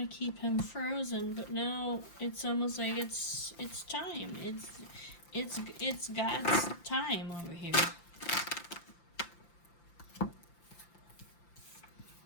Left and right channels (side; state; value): right; late; 5.8 ms